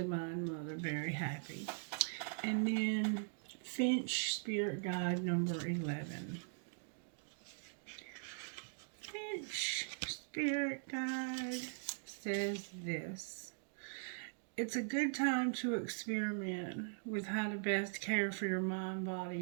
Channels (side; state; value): left; silent; digital silence